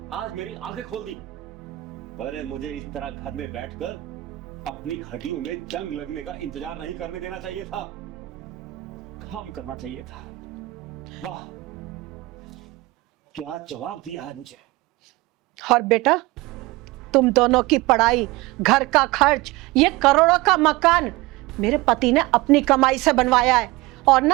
आज मेरी आंखें खोल दी। अरे मुझे इस तरह घर में बैठकर अपनी हड्डियों में जंग लगने का इंतजार नहीं करने देना चाहिए था, काम करना चाहिए था। वाह, क्या जवाब दिया है मुझे। और बेटा तुम दोनों की पढ़ाई, घर का खर्च, ये करोड़ों का मकान मेरे पति ने अपनी कमाई से बनवाया है। और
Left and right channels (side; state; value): left; quieter; 20.2 dB